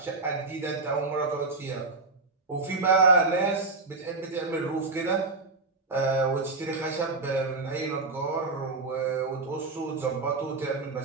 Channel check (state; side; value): quieter; left; 3.7 dB